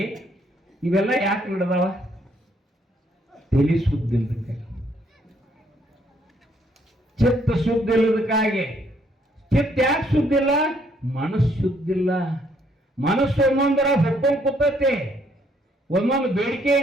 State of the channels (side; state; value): both; normal; correlation 0.69